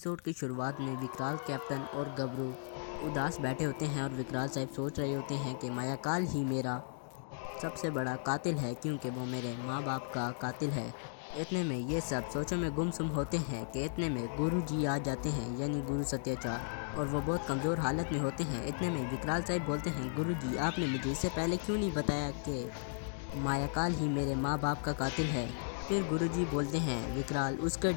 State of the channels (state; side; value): silent; right; digital silence